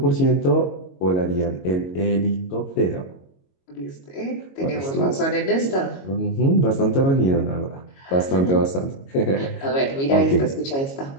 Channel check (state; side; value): late; right; 22 ms